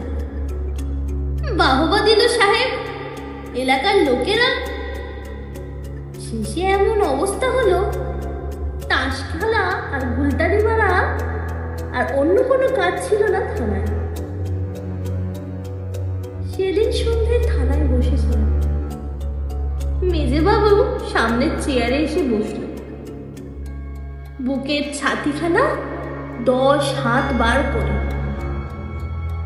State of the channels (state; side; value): identical; both; correlation 1.00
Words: বাহবা দিল সাহেব এলাকার লোকেরা। শেষে এমন অবস্থা হলো, তাস খেলা আর গুলটারি মারা আর অন্য কোনো কাজ ছিল না থানায়। সেদিন সন্ধ্যায় থানায় বসেছিলাম। মেজবাবু সামনের চেয়ারে এসে বসল। বুকের ছাতিখানা 10 হাত বার করে।